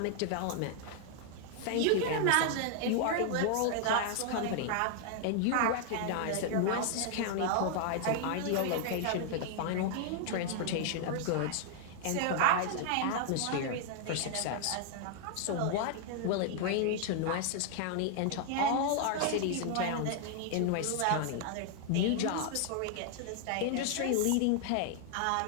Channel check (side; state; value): both; different; correlation 0.00